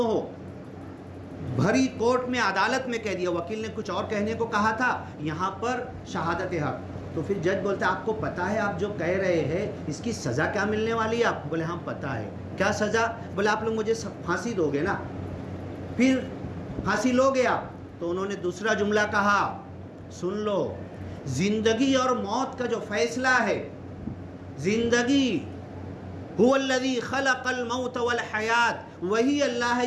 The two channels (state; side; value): identical; both; correlation 1.00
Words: ہو. بھری کورٹ میں، عدالت میں کہہ دیا. وکیل نے کچھ اور کہنے کو کہا تھا، یہاں پر شہادت حق. تو پھر جج بولتا ہے آپ کو پتہ ہے آپ جو کہہ رہے ہیں اس کی سزا کیا ملنے والی ہے آپ؟ بولے ہاں پتہ ہے. کیا سزا؟ بولے آپ لوگ مجھے پھانسی دو گے نا. پھر پھانسی لو گے آپ؟ تو انہوں نے دوسرا جملہ کہا، سن لو، زندگی اور موت کا جو فیصلہ ہے، زندگی هو الذی خلق الموت والحیات، وہی اللہ ہے